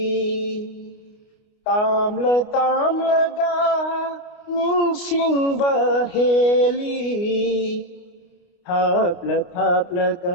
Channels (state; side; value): late; right; 29 ms